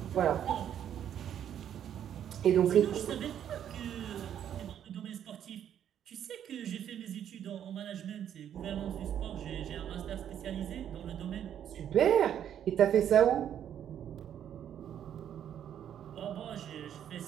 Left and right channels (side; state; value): left; quieter; 9.8 dB